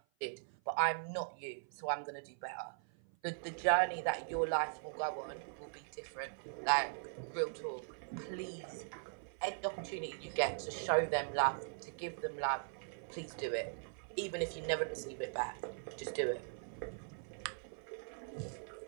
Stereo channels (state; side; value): silent; left; 51 dB below the other